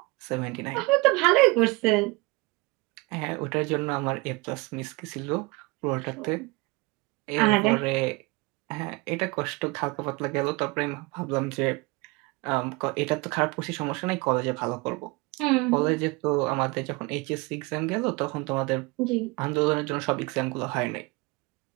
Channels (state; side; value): quieter; left; 24.4 dB